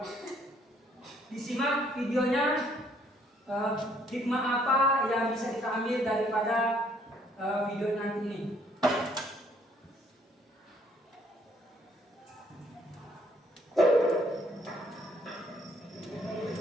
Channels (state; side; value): normal; both; correlation 0.65